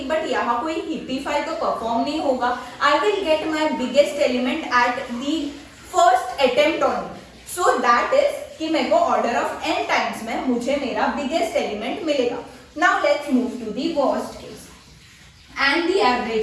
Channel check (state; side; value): identical; both; correlation 1.00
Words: बट यहाँ कोई हिपीफाई तो परफॉर्म नहीं होगा। I will get my biggest element at the first attempt on, so that is कि मेरे को ऑर्डर ऑफ n टाइम्स में मुझे मेरा बिगेस्ट एलिमेंट मिलेगा। Now let's move to the worst case and the